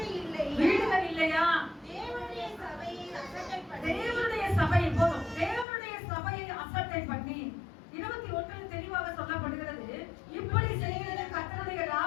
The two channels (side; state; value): right; drops out; at 5.7 s